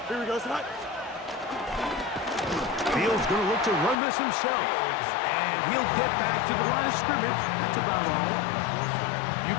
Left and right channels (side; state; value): right; drops out; at 4.0 s